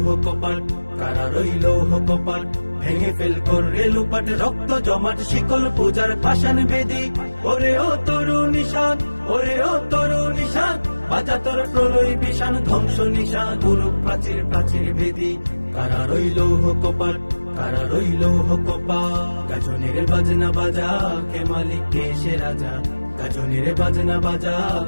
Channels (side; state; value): both; inverted; correlation -1.00